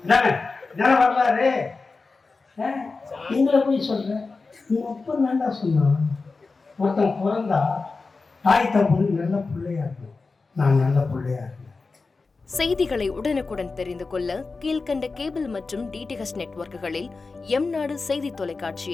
தானே வரலாறு. எங்களை போய் சொல்கிறேன், நீ அப்போ நல்லா சொன்னான். ஒருத்தன் பிறந்தா தாய் தப்புன்னு நல்ல பிள்ளையா இருக்கும். நான் நல்ல பிள்ளையா இருக்கேன். செய்திகளை உடனுக்குடன் தெரிந்து கொள்ள கீழ்கண்ட கேபிள் மற்றும் டிடிஹெச் நெட்வொர்க்குகளில் எம்நாடு செய்தி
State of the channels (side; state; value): right; quieter; 4.1 dB